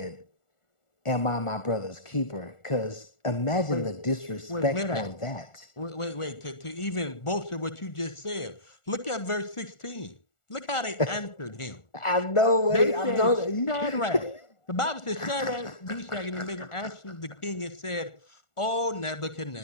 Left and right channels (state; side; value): late; right; 1.4 ms